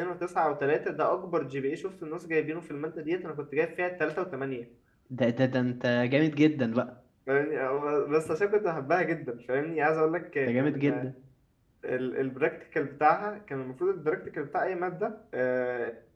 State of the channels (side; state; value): both; identical; correlation 1.00